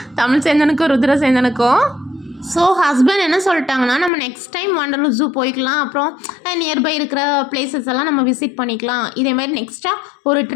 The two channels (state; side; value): drops out; right; at 4.1 s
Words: தமிழ் சேந்தனுக்கும் ருத்ர சேந்தனுக்கும். ஸோ ஹஸ்பண்ட் என்ன சொல்லிட்டாங்கன்னா, நம்ம நெக்ஸ்ட் டைம் வண்டலூர் ஜூ போய்க்கலாம், அப்புறம் நியர்பை இருக்கிற பிளேசஸ் எல்லாம் நம்ம விசிட் பண்ணிக்கலாம், இதேமாதிரி நெக்ஸ்ட்டாக ஒரு